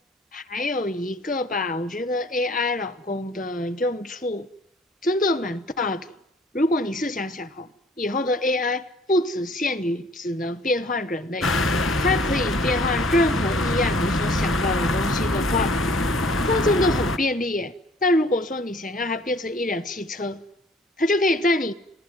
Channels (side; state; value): both; normal; correlation 0.55